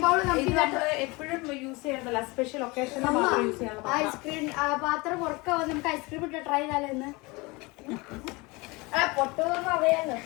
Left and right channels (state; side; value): quieter; right; 25.0 dB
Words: ബൗൾ ഇത് നമ്മൾ എപ്പോഴും യൂസ് ചെയ്യണ്ടല്ല, സ്പെഷ്യൽ ഒക്കേഷനിൽ മാത്രം യൂസ് ചെയ്യണം. ഐസ്ക്രീം പാത്രം പുറക്കാ നമുക്ക് ഐസ്ക്രീം ഇട്ട് ട്രൈ ചെയ്താലെന്ന് പൊട്ടുന്ന അറിയാലോ.